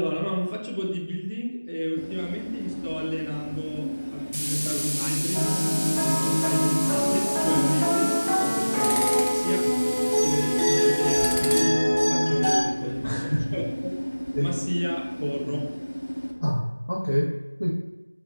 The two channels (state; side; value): inverted; both; correlation -1.00